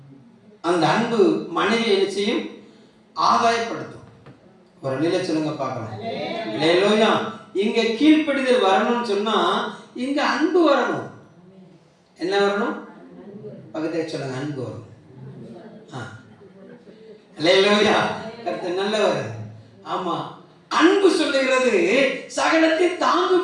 அந்த அன்பு மனைவி என்ன செய்யும்? ஆதாயப்படுத்தும். ஒரு அல்லேலூயா சொல்லுங்க பார்க்கலாம். அல்லேலூயா. இங்க கீழ்ப்படிதல் வரணும்னு சொன்னா இங்க அன்பு வரணும். என்ன வரணும்? பக்கத்துல சொல்லுங்க. அன்பு வரணும். அல்லேலூயா. கர்த்தர் நல்லவர். ஆமா, அன்பு சொல்லுகிறது சகலத்தை தாங்கும்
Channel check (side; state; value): both; identical; correlation 1.00